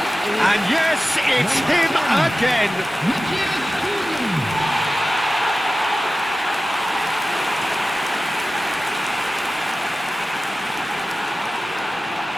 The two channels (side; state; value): both; normal; correlation 0.95